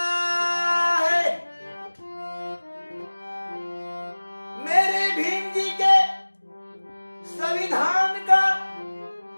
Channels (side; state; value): both; inverted; correlation -1.00